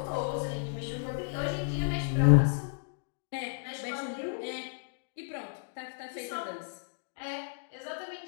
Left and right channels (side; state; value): right; silent; digital silence